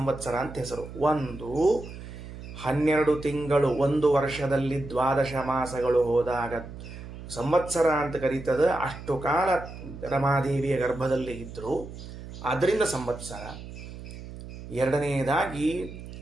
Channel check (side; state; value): right; noise; hum, 12 dB below the sound